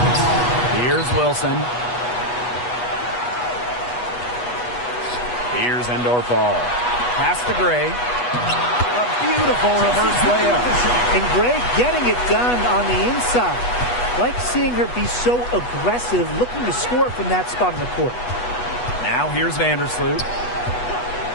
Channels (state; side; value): late; right; 8.2 ms